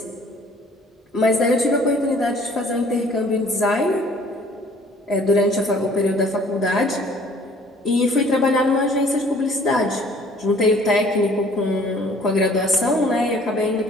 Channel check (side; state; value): both; normal; correlation 0.55